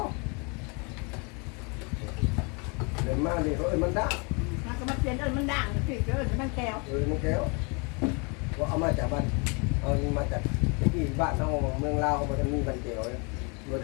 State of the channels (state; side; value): quieter; right; 32.8 dB